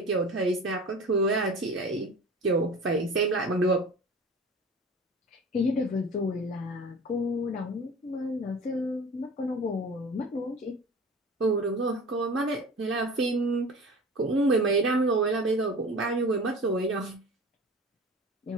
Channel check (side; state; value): both; normal; correlation 0.38